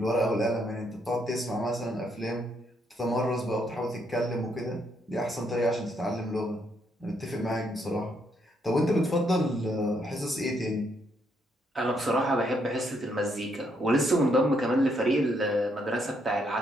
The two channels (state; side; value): normal; both; correlation 0.74